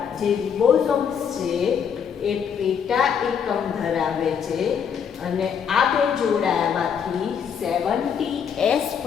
જે રિબોઝોમ્સ છે એ પેટા એકમ ધરાવે છે અને આ બે જોડાયામાંથી 70S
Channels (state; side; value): quieter; right; 7.4 dB